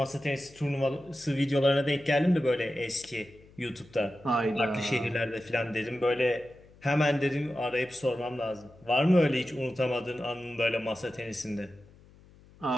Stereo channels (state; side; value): noise; left; hum, 25 dB below the sound